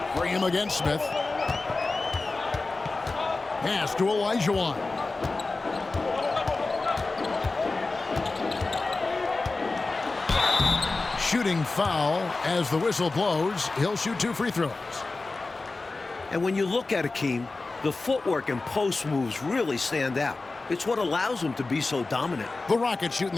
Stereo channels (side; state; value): right; quieter; 3.5 dB